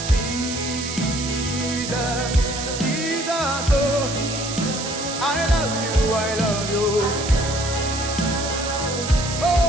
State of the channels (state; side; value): noise; right; hiss, 6 dB below the sound